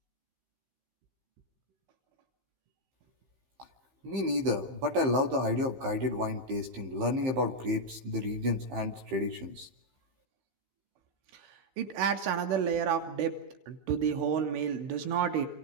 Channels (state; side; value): late; left; 15 ms